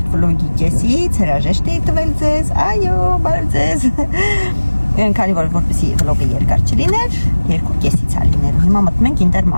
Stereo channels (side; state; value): both; inverted; correlation -1.00